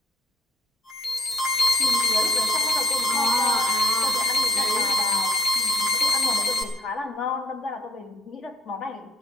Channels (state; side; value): normal; both; correlation 0.71